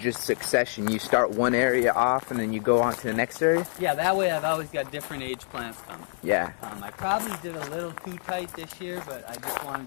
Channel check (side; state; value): right; silent; 57 dB below the other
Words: succession. You start one area off and then you go on to the next area? Yeah, that way I've always got different age plants coming. Yeah. I probably did a little too tight this year, but I just